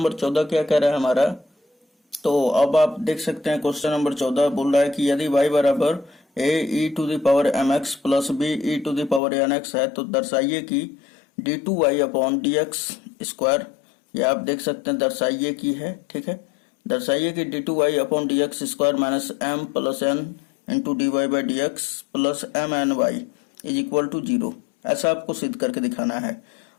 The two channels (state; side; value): drops out; right; at 9.2 s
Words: 14 क्या कह रहा है हमारा, तो अब आप देख सकते हैं क्वेश्चन नंबर 14 बोल रहा है कि यदि y बराबर a e to the power mx plus b e to the power nx है तो दर्शाइए कि d2y अपॉन dx स्क्वायर, ये आप देख सकते हैं दर्शाइए की है, ठीक है। दर्शाइए कि d2y upon dx square minus m plus n into dy by dx plus mny is equal to 0, ऐसा आपको सिद्ध करके दिखाना है,